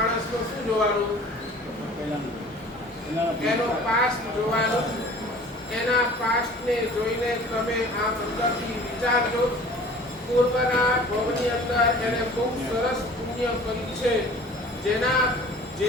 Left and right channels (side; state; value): both; normal; correlation 0.46